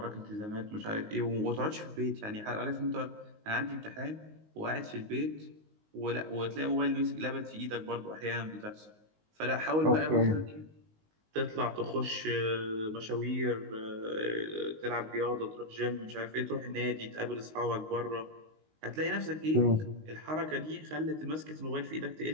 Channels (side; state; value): left; late; 19 ms